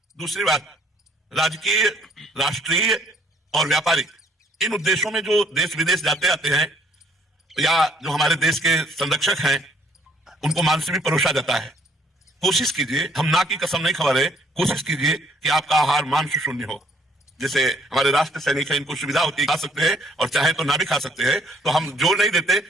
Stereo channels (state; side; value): normal; both; correlation 0.64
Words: दूसरी बात, राजकीय, राष्ट्रीय और व्यापारिक इन उद्देश्यों में जो देश विदेश जाते आते हैं या जो हमारे देश के संरक्षक हैं उनको मान से भी परोसा जाता है। कोशिश कीजिए, हम ना की कसम नहीं खा रहे, कोशिश कीजिए कि आपका आहार मांस शून्य हो। जैसे हमारे राष्ट्र सैनिक हैं, इनको सुविधा होती है, खा सकते हैं और चाहे तो ना भी खा सकते हैं। तो हम जोर नहीं देते,